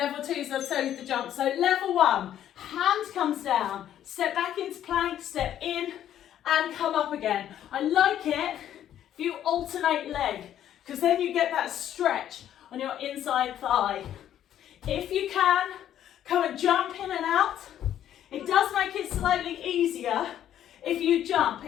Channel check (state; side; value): quieter; right; 11.0 dB